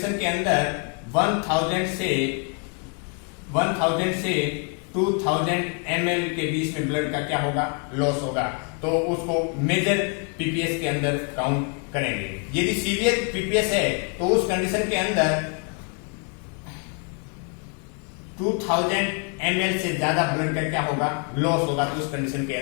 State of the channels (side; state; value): right; quieter; 38.0 dB